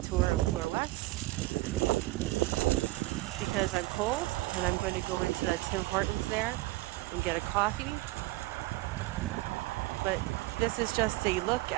tour of Bloor West. Because I'm cold and I'm going to go into that Tim Hortons there and get a coffee. But this is just a look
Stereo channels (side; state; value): left; quieter; 20.3 dB